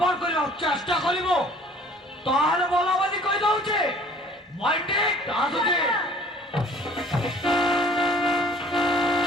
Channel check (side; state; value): both; normal; correlation 0.53